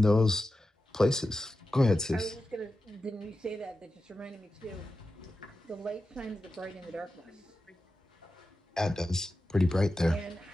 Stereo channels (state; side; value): normal; both; correlation 0.92